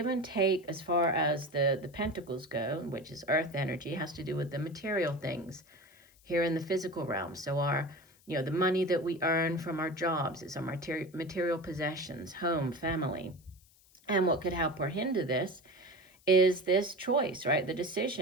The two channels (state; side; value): noise; left; hiss, 29 dB below the sound